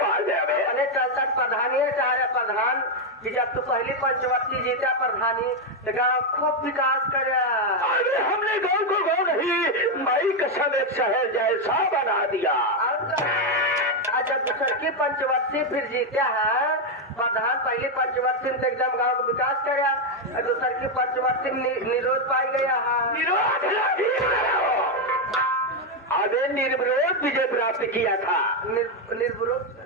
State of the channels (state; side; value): normal; both; correlation 0.04